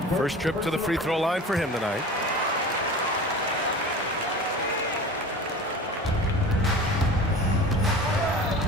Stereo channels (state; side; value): normal; both; correlation 0.36